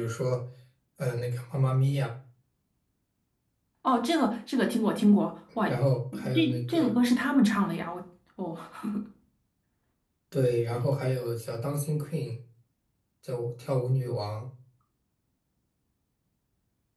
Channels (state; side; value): identical; both; correlation 1.00